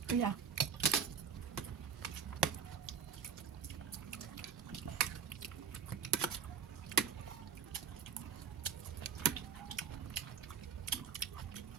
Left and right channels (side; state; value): left; quieter; 6.8 dB